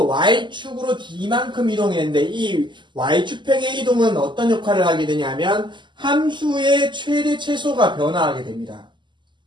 Y축으로 D만큼 이동했는데 이 Y축 평행이동은 어떤 역할을 하게 되냐면 함수의 최대 최소가 변화하게 됩니다.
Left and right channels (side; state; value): left; late; 0.22 ms